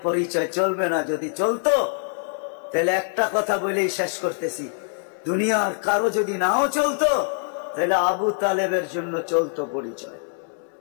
পরিচয় চলবে না। যদি চলতো তাহলে একটা কথা বলেই শেষ করতেছি, দুনিয়ার কারো যদি নাও চলতো তাহলে আবু তালেবের জন্য চলতো পরিচয়।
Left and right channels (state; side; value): silent; right; 63 dB below the other